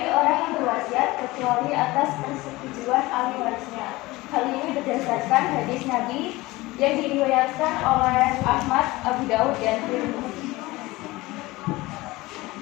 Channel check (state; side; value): quieter; right; 20.2 dB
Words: orang yang berwasiat kecuali atas persetujuan ahli warisnya. Hal ini berdasarkan hadis Nabi yang diriwayatkan oleh Ahmad, Abu Daud, dan Tirmidzi.